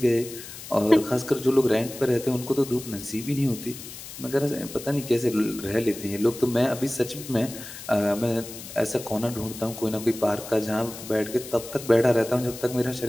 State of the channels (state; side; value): noise; left; hiss, 13 dB below the sound